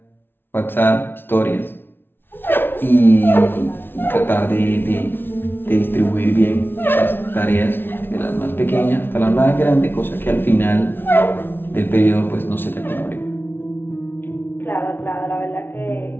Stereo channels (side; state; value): right; late; 0.10 ms